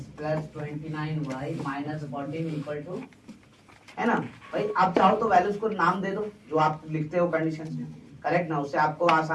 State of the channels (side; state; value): both; identical; correlation 1.00